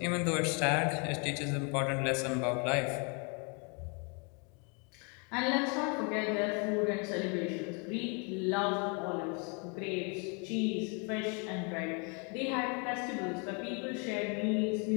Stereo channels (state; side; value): quieter; right; 34.7 dB